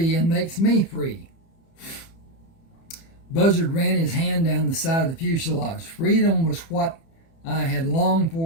and makes me free. Buzzard ran his hand down the side of the fuselage. Freedom was what I had longed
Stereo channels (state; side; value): late; right; 30 ms